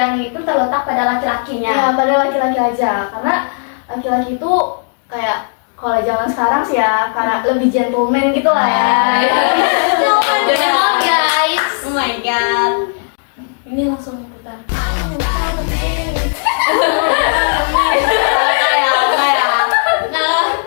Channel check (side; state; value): right; silent; digital silence